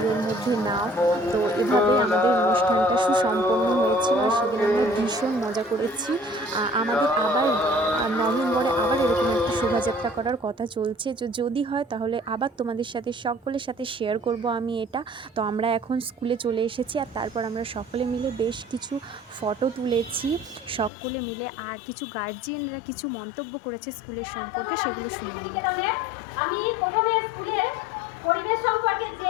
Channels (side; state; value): right; drops out; at 20.9 s